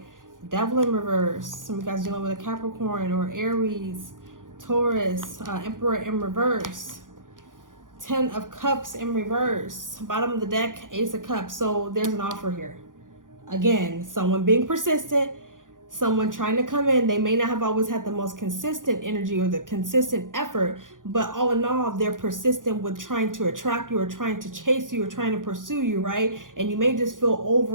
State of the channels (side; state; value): left; late; 0.89 ms